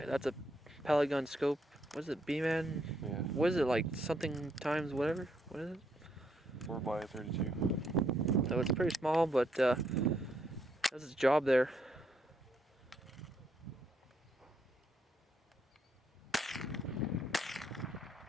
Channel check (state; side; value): normal; both; correlation 0.74